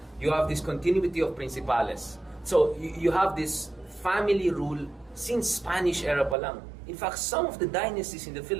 you have this continuity of principales. So you have this family rule since Spanish era pa lang. In fact, some of the dynasties in the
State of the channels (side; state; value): left; drops out; at 6.4 s